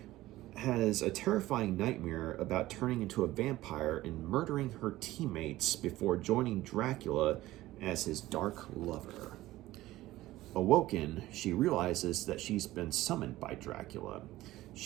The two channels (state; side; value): quieter; left; 16.5 dB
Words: has a terrifying nightmare about turning into a vampire and murdering her teammates before joining Dracula as his dark lover. Awoken, she realizes that she's been summoned by Dracula.